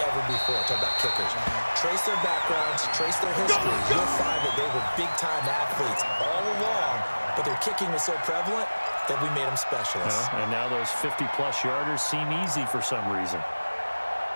before. Talk about kickers. Trace their backgrounds, trace their history. You'll find that they were big-time athletes all along, but their kicking was so prevalent that we made them specialists. And now those 50-plus yarders seem easy for some reason.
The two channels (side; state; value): both; inverted; correlation -1.00